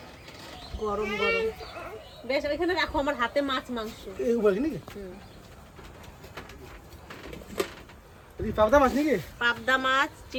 গরম গরম। বেশ, ওইখানে রাখো, আমার হাতে মাছ মাংস। এই বলি নাকি হুম। এই পাবদা মাছ নাকি? পাবদা মাছ,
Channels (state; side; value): identical; both; correlation 1.00